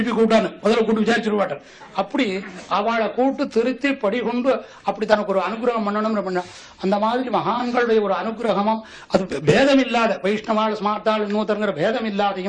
கூப்பிட்டான்னு முதல்ல கூட்டு விசாரிச்சுட மாட்டார். அப்படி அவளை கூட்டு திருத்தி படிகொண்டு அப்படி தனக்கு ஒரு அனுகிரகம் பண்ணணும்னு பண்ண அந்த மாதிரி மகான்களுடைய ஒரு அனுகிரகமும் அது பேதம் இல்லாத வைஷ்ணவாள் ஸ்மார்த்தாள் இன்னொருத்தருங்கிற பேதம்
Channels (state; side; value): identical; both; correlation 1.00